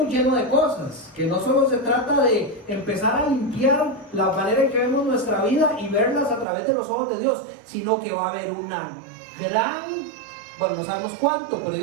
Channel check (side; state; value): left; drops out; at 6.5 s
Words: lleno de cosas, que no solo se trata de empezar a limpiar la manera en que vemos nuestra vida y verlas a través de los ojos de Dios, sino que va a haber una gran, bueno, no sabemos cuánto, pero